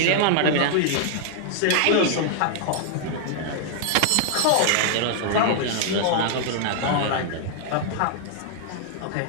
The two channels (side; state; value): both; different; correlation 0.00